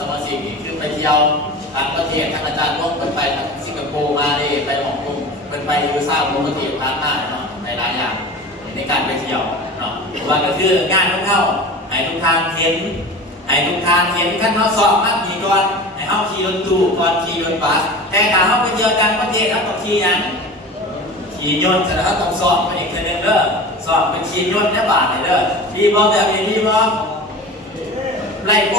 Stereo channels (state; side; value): normal; both; correlation 0.34